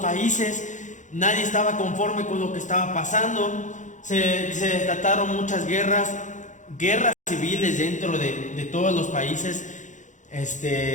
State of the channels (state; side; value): late; right; 0.36 ms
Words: países, nadie estaba conforme con lo que estaba pasando, se desataron muchas guerras civiles dentro de todos los países,